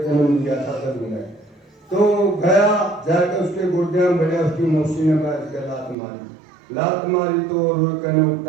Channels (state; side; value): drops out; left; at 6.0 s